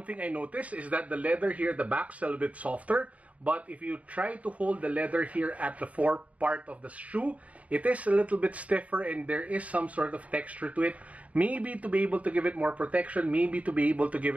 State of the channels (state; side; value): late; left; 0.068 ms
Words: thing I noticed is that the leather here at the back is a little bit softer, but if you try to hold the leather here at the fore part of the shoe, it is a little bit stiffer and there is some sort of texture to it. Maybe to be able to give it more protection, maybe to be able to give